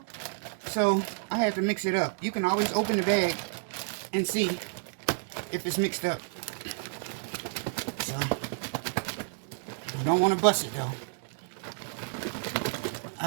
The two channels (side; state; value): left; silent; digital silence